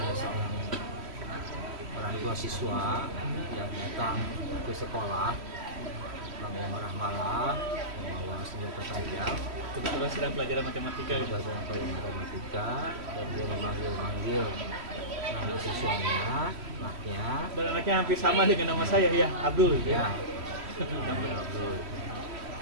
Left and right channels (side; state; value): left; late; 3.1 ms